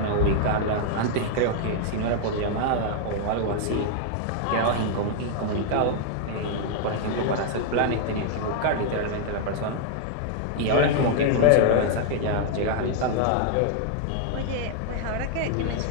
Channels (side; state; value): both; different; correlation 0.00